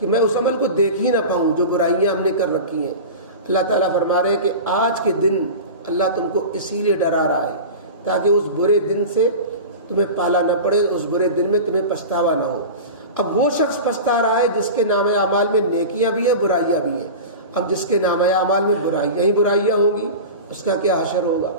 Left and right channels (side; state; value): both; inverted; correlation -0.30